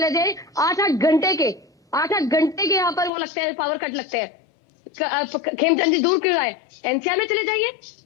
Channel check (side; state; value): right; drops out; at 3.1 s